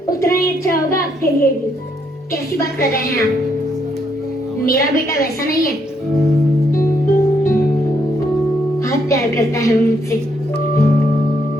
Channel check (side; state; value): both; normal; correlation 0.74